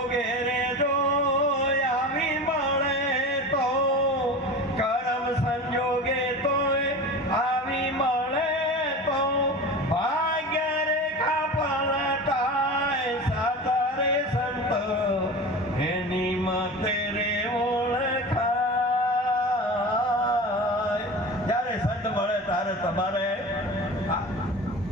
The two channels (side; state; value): both; normal; correlation 0.32